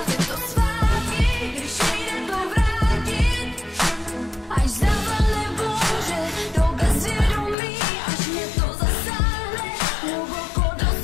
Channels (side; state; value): right; drops out; at 7.6 s